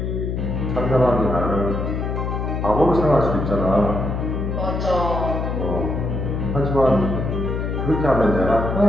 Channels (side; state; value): left; noise; hum, 2 dB below the sound